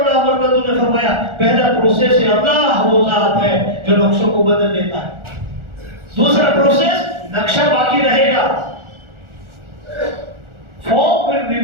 अमर ने फरमाया, पहला प्रोसेस है अल्लाह वो जात है जो नक्शों को बदल देता है। दूसरा प्रोसेस, नक्शा बाकी रहेगा, फॉर्म विल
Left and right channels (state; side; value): late; left; 1.4 ms